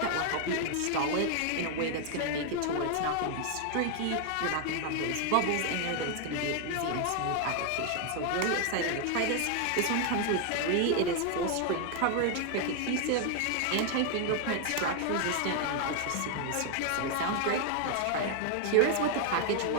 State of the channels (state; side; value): different; both; correlation 0.00